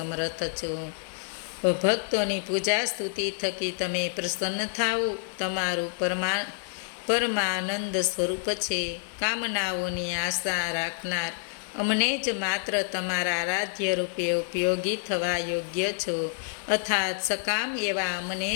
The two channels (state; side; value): silent; right; digital silence